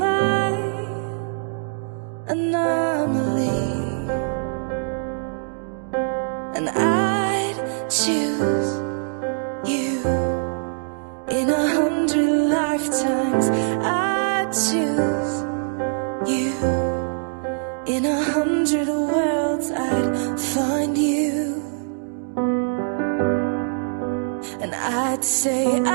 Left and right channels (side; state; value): left; silent; digital silence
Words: anomaly, and I'd choose you in 100 lifetimes. I'd choose you in 100 worlds. I'd find you, and I'd say